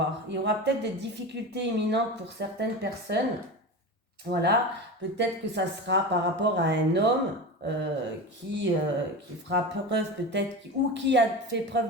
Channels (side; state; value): both; normal; correlation 0.26